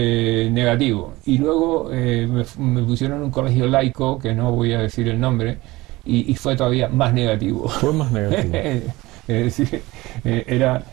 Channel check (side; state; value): left; quieter; 20.0 dB